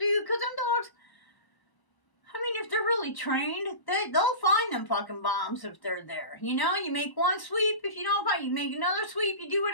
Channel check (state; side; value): late; right; 1.0 ms